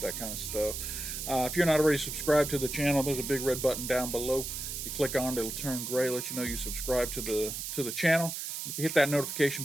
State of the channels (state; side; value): noise; right; hiss, 5 dB below the sound